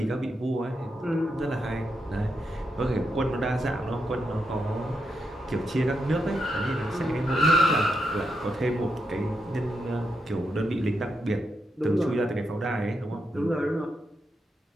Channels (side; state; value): both; normal; correlation 0.83